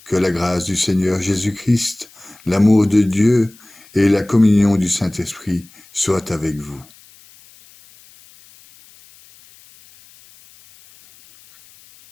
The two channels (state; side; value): noise; left; hiss, 26 dB below the sound